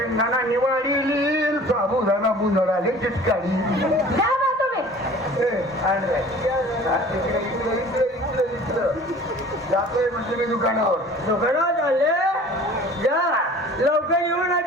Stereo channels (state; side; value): normal; both; correlation 0.46